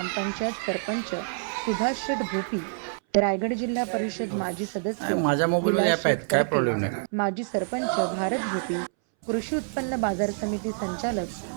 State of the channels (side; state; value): left; silent; 60 dB below the other